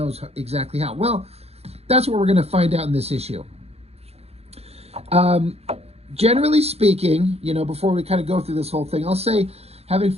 exactly how? Well, that's what we're going to find out in this issue. Generally speaking, you know, before we kind of go through this whole thing, I'll say, having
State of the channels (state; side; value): late; left; 0.30 ms